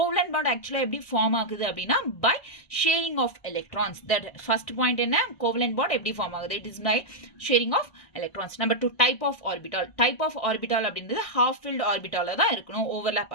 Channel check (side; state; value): right; late; 1.6 ms